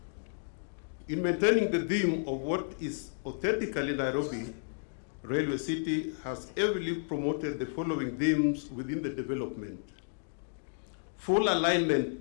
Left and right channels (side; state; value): right; silent; digital silence